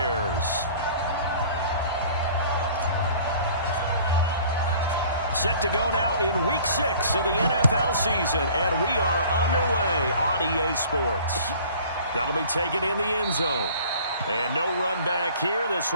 Set to go now in Week 6 of the NFL season, and we are underway on EA Sports. That'll be taken in the end zone. And no run back here. This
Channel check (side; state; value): both; inverted; correlation -0.49